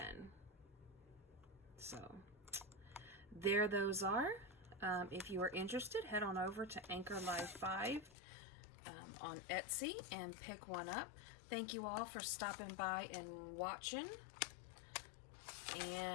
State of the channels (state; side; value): drops out; right; at 8.2 s